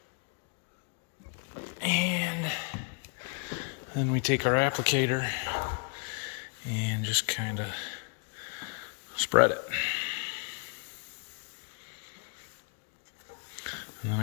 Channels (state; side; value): quieter; right; 39.6 dB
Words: And then we take our applicator and just kind of spread it. And then